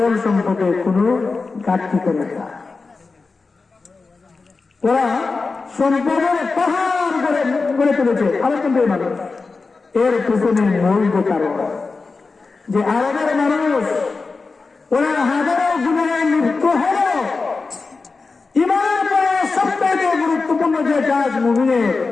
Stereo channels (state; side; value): quieter; right; 4.2 dB